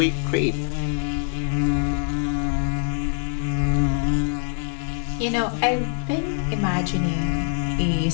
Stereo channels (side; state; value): right; silent; 61 dB below the other